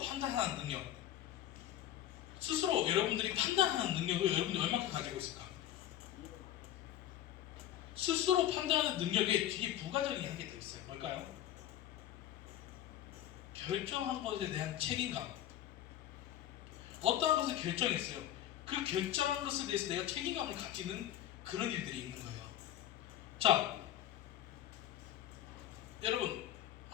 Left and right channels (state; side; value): quieter; right; 12.3 dB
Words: 능력. 스스로 여러분들이 판단하는 능력을 여러분들이 얼마큼 가지고 있을까? 스스로 판단하는 능력에 뒤에 부가적인 한 개 더 있어요. 뭘까요? 결정한 것에 대한 책임감. 어떠한 것을 결정했어요. 그 결정한 것에 대해서 내가 책임감을 가지는 그런 일들이 있는 거예요. 자, 여러분,